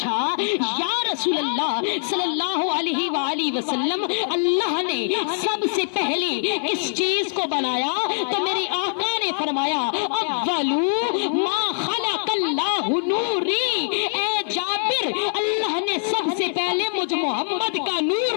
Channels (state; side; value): silent; right; digital silence